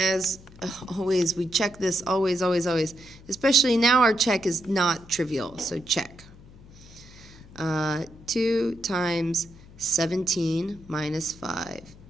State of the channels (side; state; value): left; noise; hum, 21 dB below the sound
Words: always, we check this always, always, always. Especially now our check is not trivial, so check. 2 times 17 minus 5.